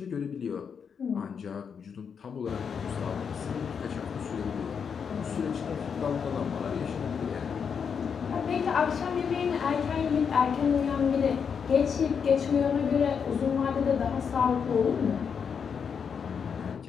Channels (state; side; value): quieter; right; 6.7 dB